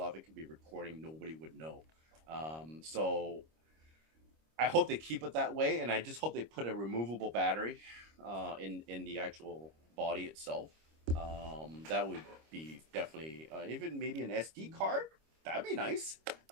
It could be recording. Nobody would know. So I hope they keep it that way, and I just hope they put a removable battery in the actual body itself. That would be definitely even maybe an SD card. That'd be nice.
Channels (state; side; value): late; left; 25 ms